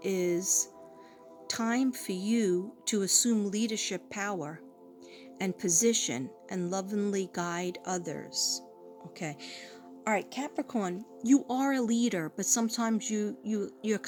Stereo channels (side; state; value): both; identical; correlation 1.00